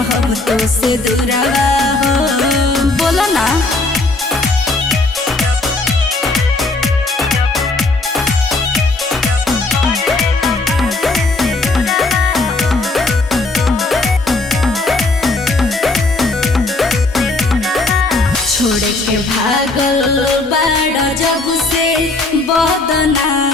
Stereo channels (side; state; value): right; quieter; 3.2 dB